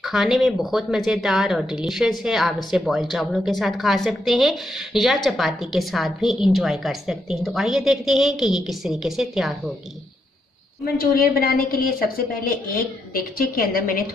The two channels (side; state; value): both; normal; correlation 0.80